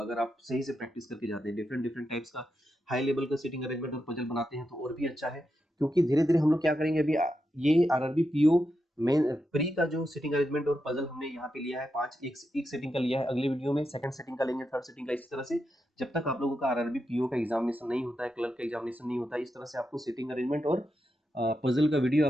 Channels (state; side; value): normal; both; correlation 0.86